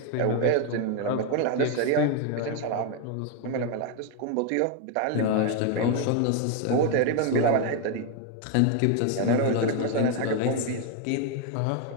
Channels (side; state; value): both; different; correlation 0.01